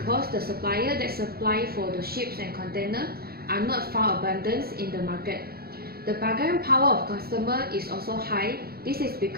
the supplier that supply for the ships and containers are not found abundant in the market. The bargaining power of customer is also high. This is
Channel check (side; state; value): left; late; 0.45 ms